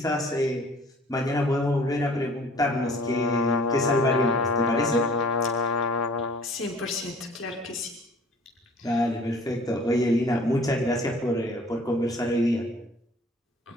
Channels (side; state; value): both; normal; correlation 0.52